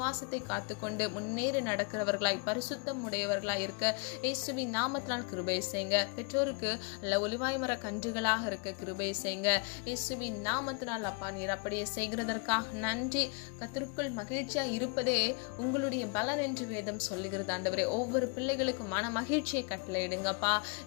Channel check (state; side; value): quieter; right; 34.5 dB